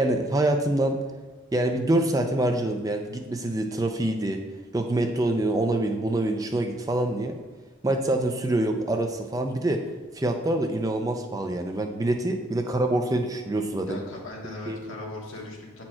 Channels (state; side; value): normal; both; correlation 0.70